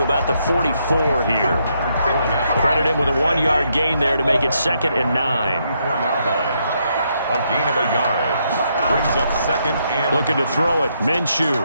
about the 44 here. Credit him with a 1-yard gain there to make it 2nd and 9. A gain of a yard. Brings up 2nd and... Looking to throw it. Minshew.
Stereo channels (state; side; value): inverted; both; correlation -0.76